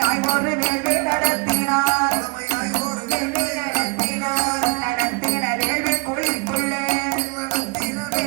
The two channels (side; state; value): left; quieter; 30.3 dB